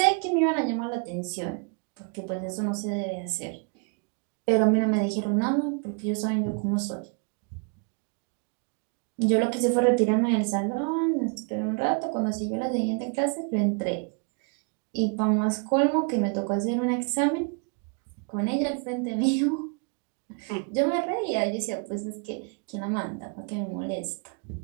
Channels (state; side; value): quieter; left; 37.1 dB